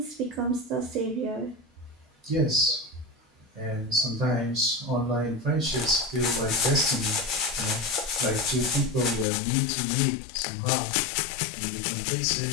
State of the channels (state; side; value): drops out; right; at 9.2 s